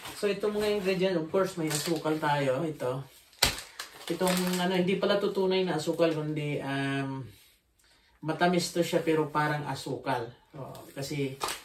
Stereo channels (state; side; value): identical; both; correlation 1.00